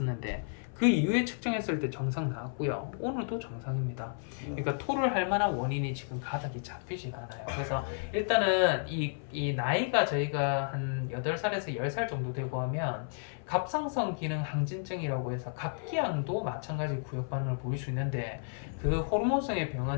그 이후에 측정했을 때 정상 나왔고요. 오늘도 정상입니다. 그러니까 토를 할 만한 원인이 지금 가닥이 잡히지가 않아요. 그래서 일단은 이 나이가 저희가 한 8살에서 10살 정도 되고 하면 갑상선 기능 항진증이라고 해서 갑기양도 마찬가지 구역 반응을 보일 수 있는데 그 호르몬성의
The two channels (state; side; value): silent; right; 56 dB below the other